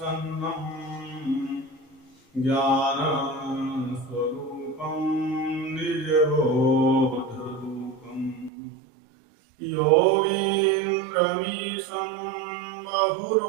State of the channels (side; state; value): left; drops out; at 8.5 s